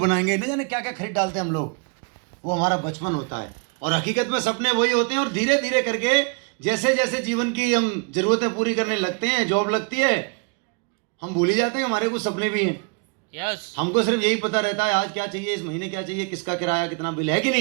बनाएंगे, नहीं जाने क्या क्या खरीद डालते हैं हम लोग। वो हमारा बचपन होता है और हकीकत में सपने वही होते हैं। और धीरे धीरे करके जैसे जैसे जीवन की हम जरूरतें पूरी करने लगते हैं, जॉब लगती है, हम भूल ही जाते हैं हमारे कुछ सपने भी हैं। यस हमको सिर्फ यही पता रहता है आज क्या चाहिए, इस महीने क्या चाहिए, किसका किराया कितना बिल है कि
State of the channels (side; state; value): left; quieter; 34.9 dB